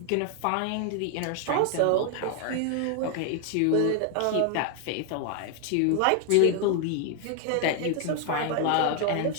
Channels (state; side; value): different; both; correlation 0.00